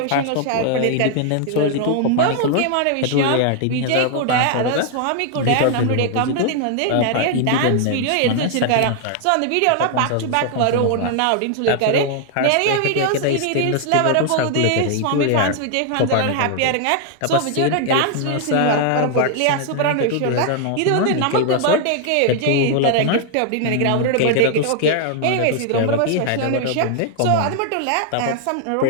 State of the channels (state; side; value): different; both; correlation 0.00